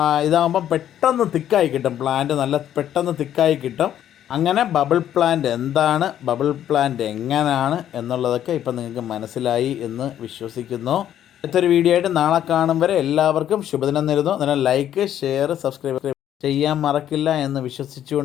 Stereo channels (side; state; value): right; quieter; 10.8 dB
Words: ഇതാകുമ്പം പെട്ടെന്ന് തിക്കായി കിട്ടും. പ്ലാന്റ് നല്ല പെട്ടെന്ന് തിക്കായി കിട്ടും. അങ്ങനെ ബബിൾ പ്ലാന്റ് എന്താണ്, ബബിൾ പ്ലാന്റ് എങ്ങനെയാണ് എന്നുള്ളതൊക്കെ ഇപ്പം നിങ്ങൾക്ക് മനസ്സിലായി എന്ന് വിശ്വസിക്കുന്നു. അടുത്തൊരു വീഡിയോ ആയിട്ട് നാളെ കാണും വരെ എല്ലാവർക്കും ശുഭദിനം നേരുന്നു. അതിനാൽ ലൈക്ക്, ഷെയർ, സബ്സ്ക്രൈബ് ചെയ്യാൻ മറക്കില്ല എന്ന്